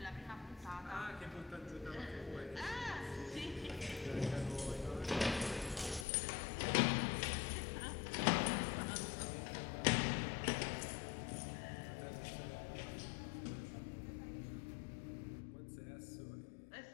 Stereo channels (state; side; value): drops out; right; at 6.1 s